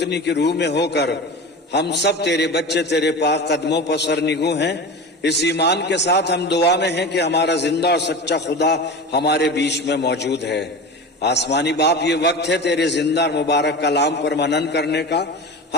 की रूह में होकर हम सब तेरे बच्चे तेरे पाक कदमों पर सरनिगू हैं। इस ईमान के साथ हम दुआ में हैं कि हमारा जिंदा और सच्चा खुदा हमारे बीच में मौजूद है। आसमानी बाप, ये वक्त है तेरे जिंदा और मुबारक कलाम पर मनन करने का।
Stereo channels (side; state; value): both; normal; correlation 0.30